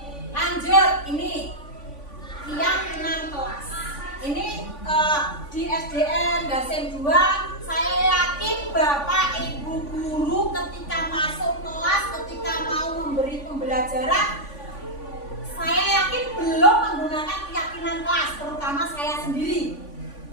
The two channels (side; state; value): right; late; 3.5 ms